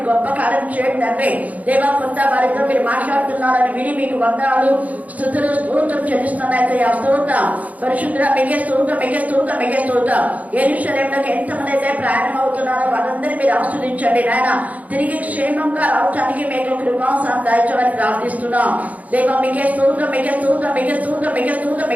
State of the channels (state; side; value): late; left; 0.073 ms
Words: గొప్ప కార్యం చేయండి తండ్రి దేవ. కొంత వారితో మీరు మాట్లాడుతున్నారని విని మీకు వందనాలు స్తుతులు స్తోత్రం చెల్లిస్తున్నాయితే ఆ స్తోత్రం పరిశుద్ధ మిగే స్తోత్రం మిగే స్తోత్రం మిగే స్తోత్రం. యెరూషలేములోకి ఎంతమంది అయితే ప్రయాణం అవుతున్నారో వారందరినీ మీరు ఆస్వాదించండి నాయన. తిరిగి క్షేమంగా రావడానికి మీకు కృపాసనం దాయించమని ప్రార్థిస్తున్నాం దేవ. మిగే స్తోత్రం మిగే స్తోత్రం మిగే స్తోత్రం మిగే స్తోత్రం